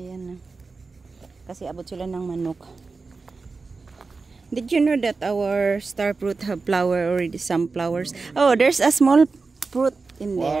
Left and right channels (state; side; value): quieter; left; 4.2 dB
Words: na. Kasi abot sila ng manok. Did you know that our star fruit have flower already? Some flowers. Oh, there's a small fruit in